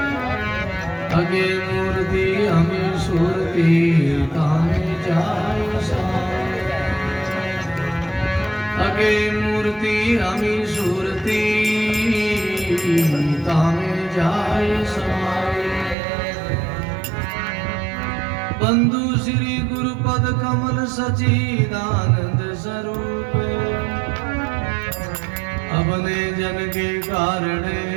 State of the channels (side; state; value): left; drops out; at 16.0 s